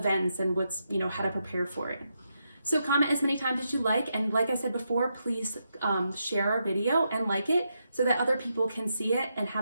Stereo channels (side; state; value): both; inverted; correlation -0.83